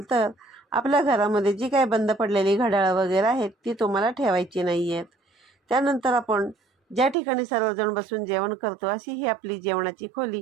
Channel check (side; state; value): left; drops out; at 7.2 s